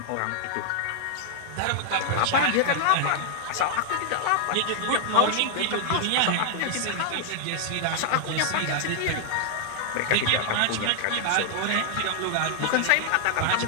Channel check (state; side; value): different; both; correlation -0.01